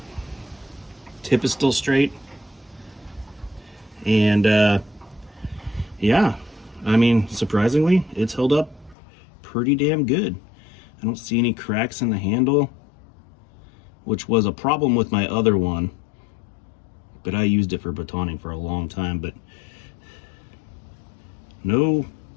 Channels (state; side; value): drops out; right; at 9.0 s